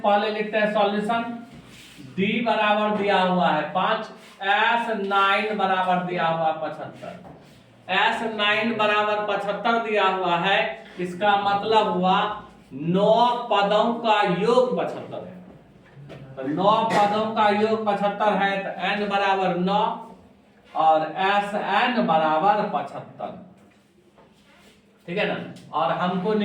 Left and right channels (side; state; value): both; identical; correlation 1.00